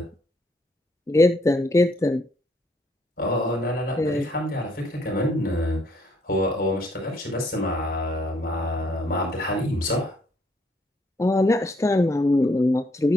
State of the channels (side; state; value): both; normal; correlation 0.69